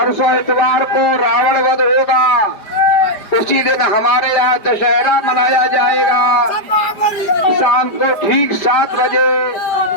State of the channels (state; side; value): late; right; 5.1 ms